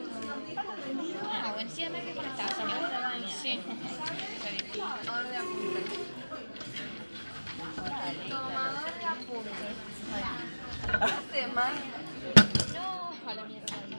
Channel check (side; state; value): both; inverted; correlation -1.00